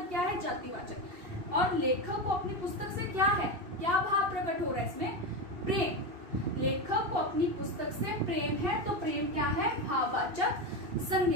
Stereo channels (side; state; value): left; late; 2.6 ms